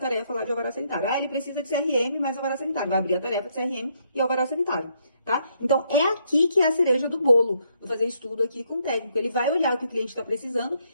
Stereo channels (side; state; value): both; inverted; correlation -0.73